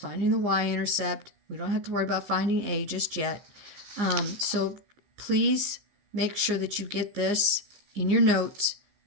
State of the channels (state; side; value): late; left; 14 ms